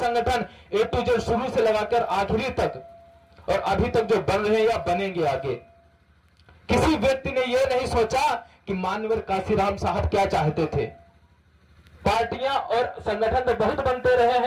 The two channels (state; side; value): identical; both; correlation 1.00